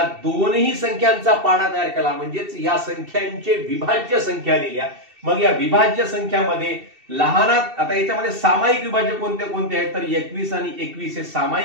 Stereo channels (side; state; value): left; late; 2.7 ms